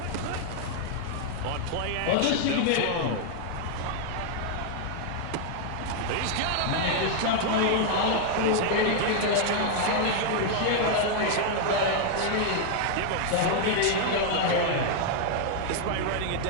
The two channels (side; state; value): both; different; correlation 0.00